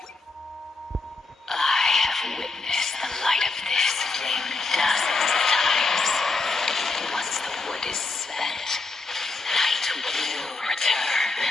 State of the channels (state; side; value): quieter; right; 3.7 dB